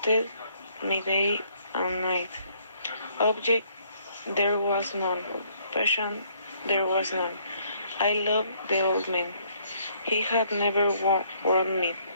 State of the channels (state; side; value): inverted; both; correlation -0.66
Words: me day and night. Object there was none, passion there was none. I loved the old man. He had never wronged me.